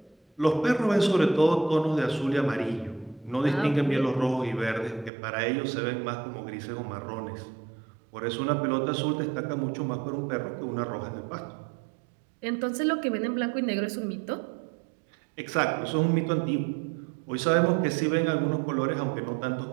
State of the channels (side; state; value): left; drops out; at 5.1 s